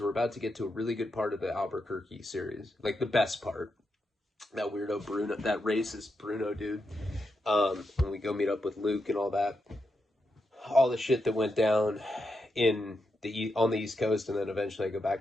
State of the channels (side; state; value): both; normal; correlation 0.85